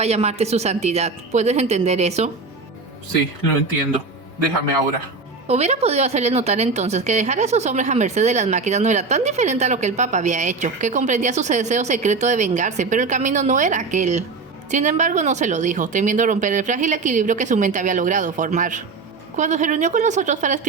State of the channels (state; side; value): quieter; left; 4.2 dB